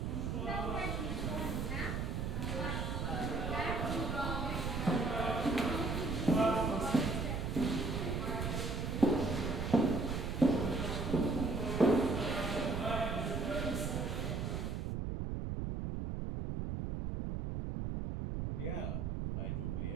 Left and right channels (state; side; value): noise; right; rumble, 2 dB below the sound